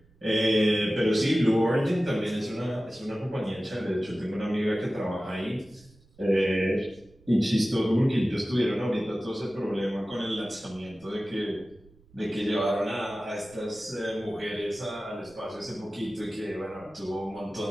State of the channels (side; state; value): right; noise; rumble, 28 dB below the sound